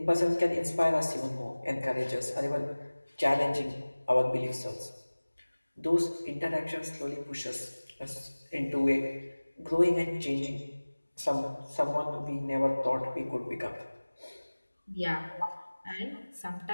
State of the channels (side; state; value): both; inverted; correlation -1.00